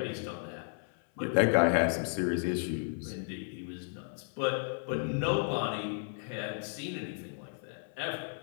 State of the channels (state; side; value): silent; right; 55 dB below the other